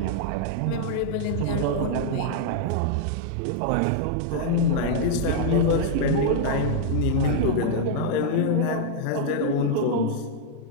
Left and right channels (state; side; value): different; both; correlation -0.01